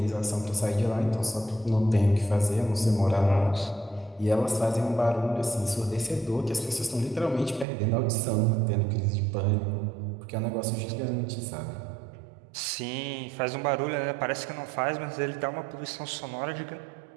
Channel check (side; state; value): left; drops out; at 7.7 s